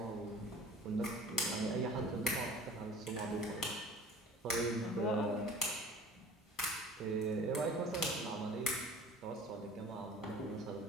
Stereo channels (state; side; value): normal; both; correlation 0.45